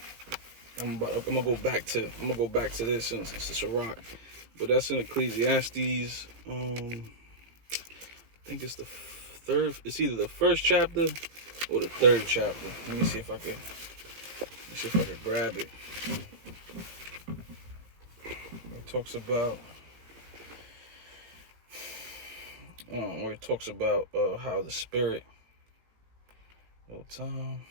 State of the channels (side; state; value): left; late; 18 ms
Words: I'm gonna go back to this since it's a Sirach, but that's in Ecclesiastes. I think it's the third. It's either the first chapter or the third chapter. Let me see if I could grab it. It talks about where it talks about how the spirit. Hold time.